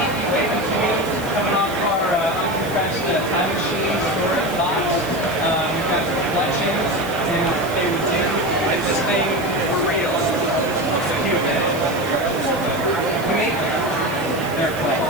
coming off our uncompressed time machine storage box. We've got some collections, and they would do this thing for real. It's a huge edit. We make them. They're clay.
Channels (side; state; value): right; noise; hiss, 16 dB below the sound